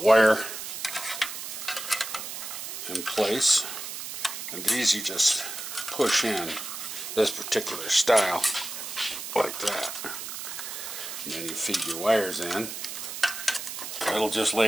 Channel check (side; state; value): right; noise; hiss, 7 dB below the sound